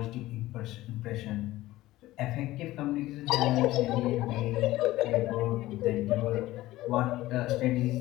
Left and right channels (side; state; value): right; quieter; 16.8 dB